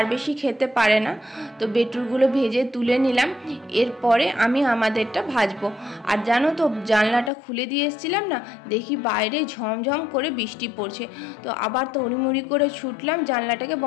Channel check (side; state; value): right; drops out; at 7.3 s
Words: বেশি খেতে পারে না। তো বেটুরগুলো ভেজে তুলে নিলাম, এরপরে আমি আমাদেরটা ভাজবো। আর জানো তো জানলাটা খুলে দিয়ে এসেছিলাম না, দেখি বাইরে ঝমঝম করে বৃষ্টি পড়ছে। তো আবার তড়িমড়ি করে ছুটলাম জানলাটাকে